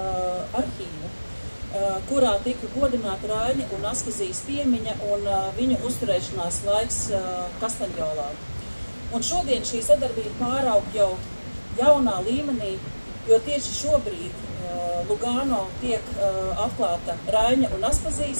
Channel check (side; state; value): both; inverted; correlation -1.00